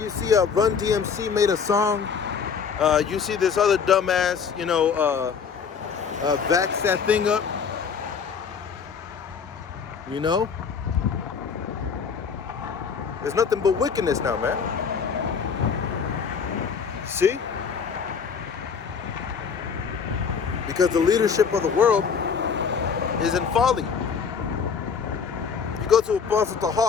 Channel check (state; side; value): quieter; right; 6.2 dB